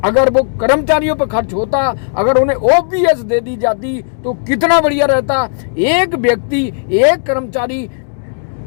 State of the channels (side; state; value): right; silent; digital silence